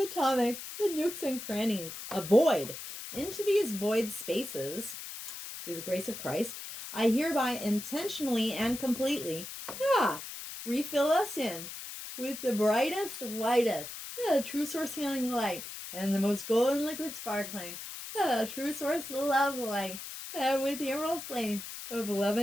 nooks and crannies, a void. Into these void spaces, through the grace of Christ, I hereby intentionally and completely refill us in with the brightest, whitest, true source healing light, and the most golden liquid sparkling, true source love light, with the emerald flame of love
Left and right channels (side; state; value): left; noise; hiss, 10 dB below the sound